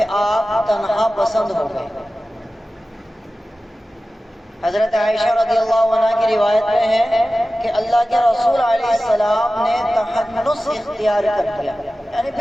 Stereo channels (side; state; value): both; normal; correlation 0.95